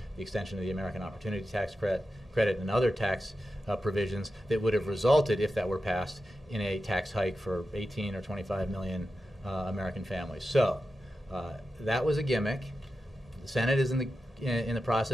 the extension of the American Opportunity Tax Credit and other tax provisions that would have resulted, if that were passed, in a tax hike for 18 or 25 million American families. So that was a gimmick. The Senate is in the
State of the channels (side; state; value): both; normal; correlation 0.91